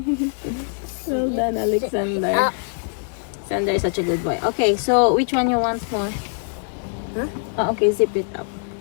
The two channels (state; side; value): silent; right; digital silence